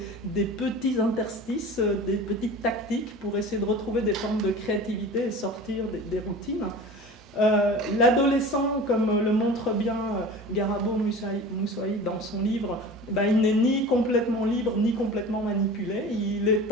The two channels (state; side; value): normal; both; correlation 0.37